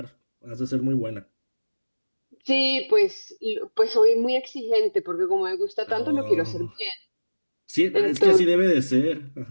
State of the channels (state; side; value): inverted; both; correlation -1.00